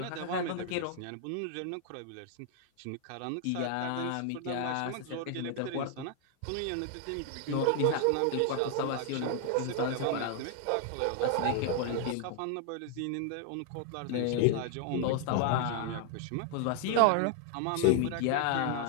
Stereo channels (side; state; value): both; different; correlation 0.00